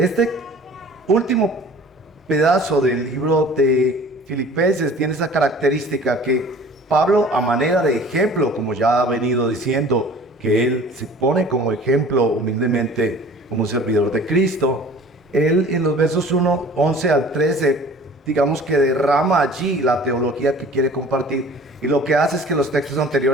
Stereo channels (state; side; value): normal; both; correlation 0.46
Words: último pedazo del libro de Filipenses tiene esa característica que Pablo, a manera de ejemplo, como ya ha venido diciendo, que él se pone como ejemplo humildemente como un servidor de Cristo, él en los versos 1, 11 al 13, digamos que derrama allí la teología que quiere compartir, y lo que hace es que los textos